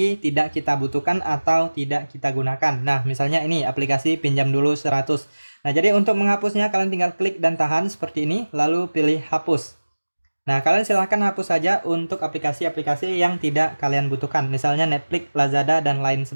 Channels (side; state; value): both; inverted; correlation -1.00